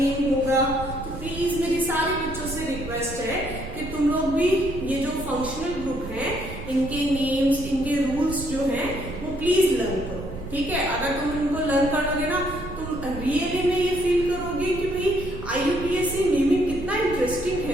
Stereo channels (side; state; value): right; noise; rumble, 10 dB below the sound